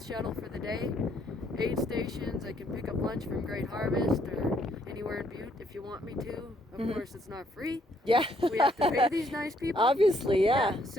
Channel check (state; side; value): normal; both; correlation 0.69